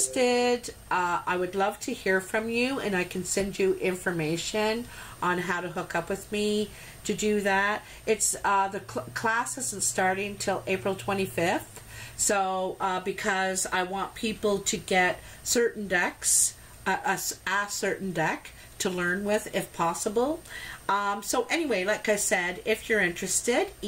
I would love to hear from you, and I can send you information on how to hook up with me to do that. It's the class isn't starting till April 25th, so because I want people to get certain decks, a certain deck to learn with if possible. So anyway, like I said, if you're interested,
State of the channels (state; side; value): identical; both; correlation 1.00